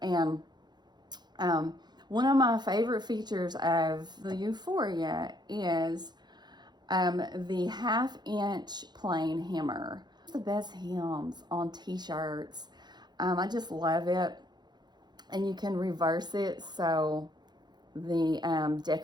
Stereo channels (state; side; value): late; left; 0.21 ms